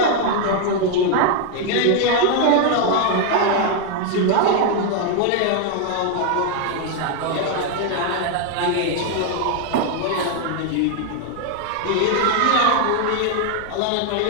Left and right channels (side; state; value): both; different; correlation 0.00